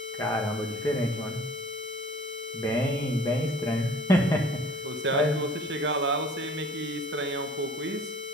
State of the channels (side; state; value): both; normal; correlation 0.50